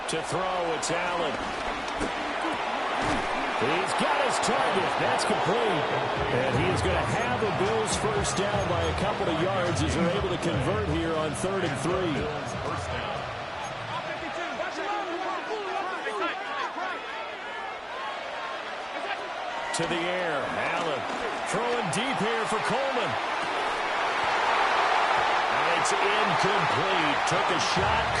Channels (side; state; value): both; identical; correlation 1.00